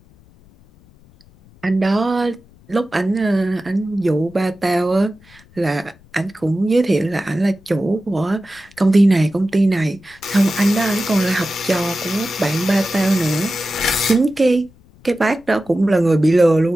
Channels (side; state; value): left; noise; rumble, 28 dB below the sound